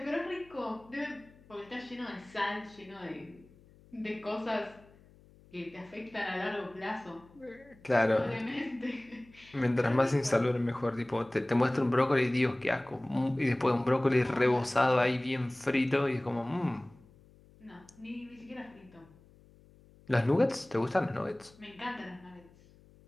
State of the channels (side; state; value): left; noise; hum, 26 dB below the sound